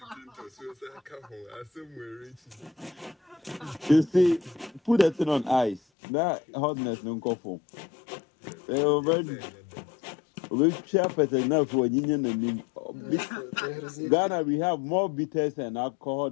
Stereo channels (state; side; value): drops out; right; at 5.8 s